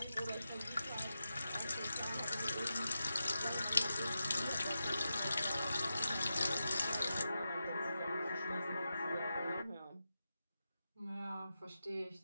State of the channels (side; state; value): both; inverted; correlation -0.90